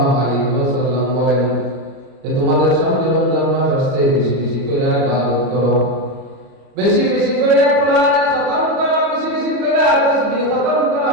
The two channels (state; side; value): late; left; 34 ms